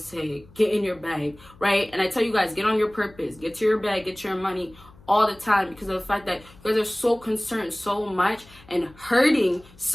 get in your bag, right? And I tell you guys, get on your purpose. Get to your bag, get your money all the time, because of the fact that you guys are so concerned so much and hurting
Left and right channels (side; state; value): left; noise; hum, 24 dB below the sound